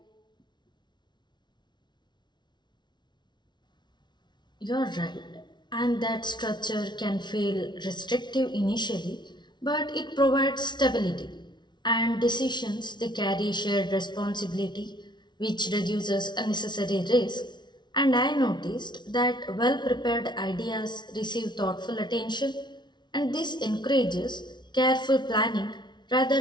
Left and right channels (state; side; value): late; right; 0.21 ms